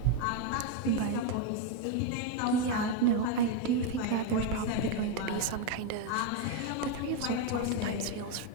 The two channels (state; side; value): different; both; correlation 0.02